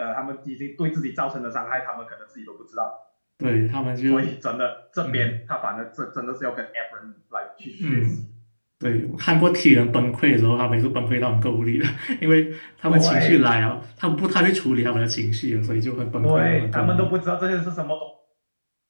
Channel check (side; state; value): both; inverted; correlation -1.00